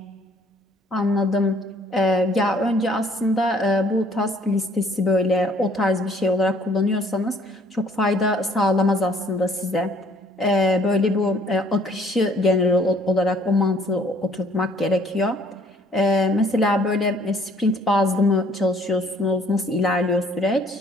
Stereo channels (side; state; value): both; normal; correlation 0.60